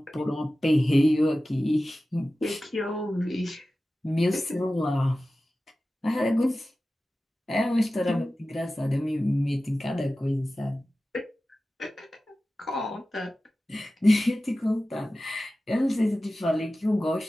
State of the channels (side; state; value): both; normal; correlation 0.95